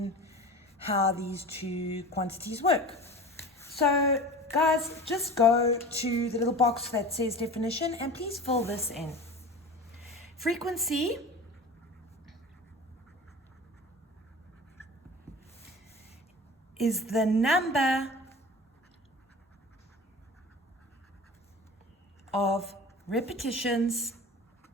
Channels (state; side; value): normal; both; correlation 0.35